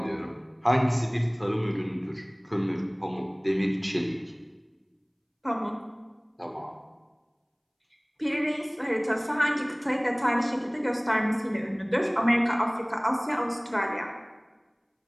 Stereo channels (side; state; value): both; identical; correlation 1.00